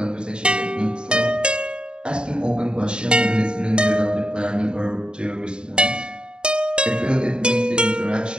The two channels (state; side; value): late; left; 0.050 ms